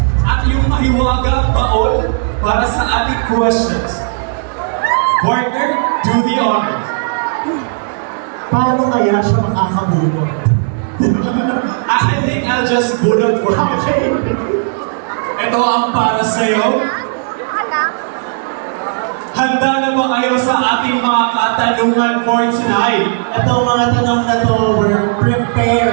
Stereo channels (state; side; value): silent; left; digital silence